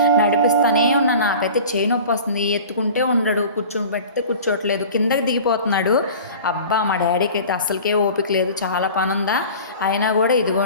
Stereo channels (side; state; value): both; inverted; correlation -0.40